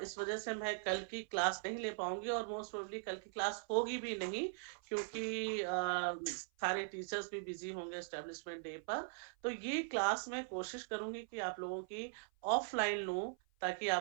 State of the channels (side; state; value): left; silent; 51 dB below the other